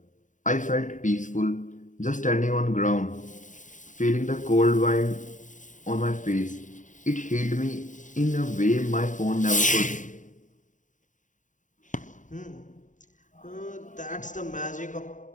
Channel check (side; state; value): right; late; 0.37 ms